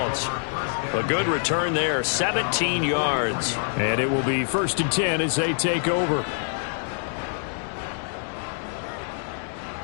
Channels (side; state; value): right; silent; digital silence